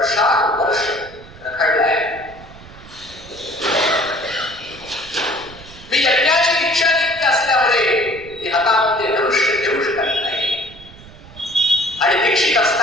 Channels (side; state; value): right; noise; rumble, 19 dB below the sound